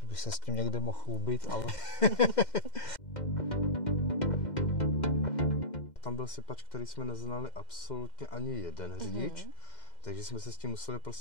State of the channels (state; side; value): late; right; 2.1 ms